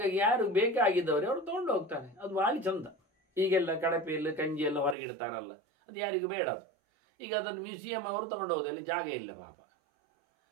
ಯಾರು ಬೇಕಾಗಿದ್ದವರು ಅವರು ತಗೊಂಡು ಹೋಗ್ತಾರೆ. ಅದು ಭಾಳ ಚಂದ. ಈಗೆಲ್ಲ ಕಡಪೆಯಲ್ಲಿ ಕಂಜಿ ಎಲ್ಲ ಹೊರಗಿಡ್ತಾರಲ್ಲ, ಅದು ಯಾರಿಗೂ ಬೇಡ. ಅದು ಈಗ ಅದನ್ನು ಮ್ಯೂಸಿಯಂ ಅವರು ತಗೊಂಡು ಹೋಗೋದು, ಅಲ್ಲಿ ಜಾಗ ಇಲ್ಲ ಪಾಪ.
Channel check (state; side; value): drops out; left; at 5.0 s